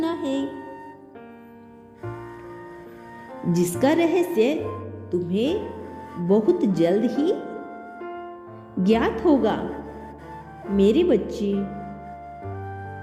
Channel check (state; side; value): identical; both; correlation 1.00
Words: है, जिसका रहस्य तुम्हें बहुत जल्द ही ज्ञात होगा। मेरे बच्चे,